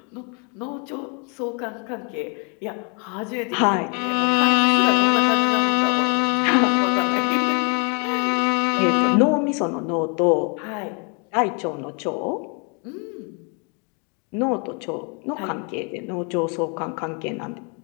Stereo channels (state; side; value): quieter; right; 35.7 dB